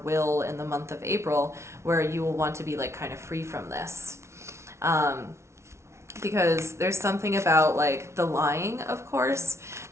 in the month of April, where you will want to be like kind of free from this. Because there's something about like the lying, of course,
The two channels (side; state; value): left; late; 0.13 ms